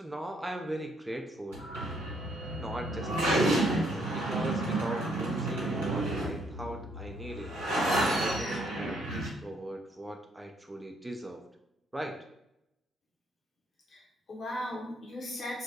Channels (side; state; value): both; normal; correlation 0.70